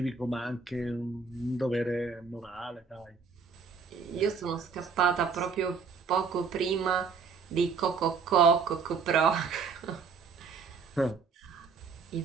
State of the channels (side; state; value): left; quieter; 5.4 dB